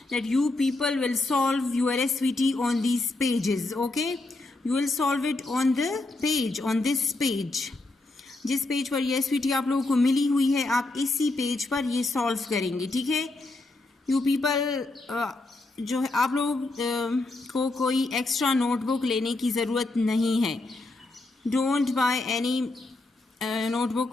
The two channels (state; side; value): quieter; right; 3.0 dB